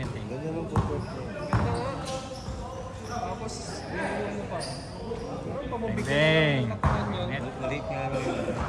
eh. Ganyan ang footwork niya. Ganda nga. Tapos, yung ano pa. Bang. Maliit nga lang yun.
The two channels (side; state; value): both; identical; correlation 1.00